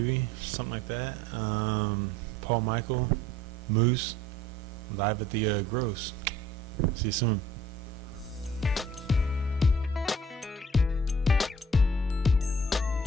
something like that. Paul Michael, Moose, live at the Gross. See you soon.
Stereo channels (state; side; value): normal; both; correlation 0.54